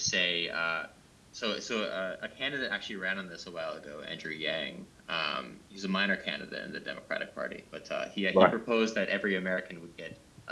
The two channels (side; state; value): both; identical; correlation 1.00